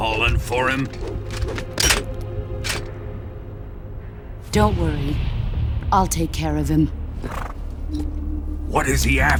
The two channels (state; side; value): identical; both; correlation 1.00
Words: for him? Don't worry. I'll take care of him. What is he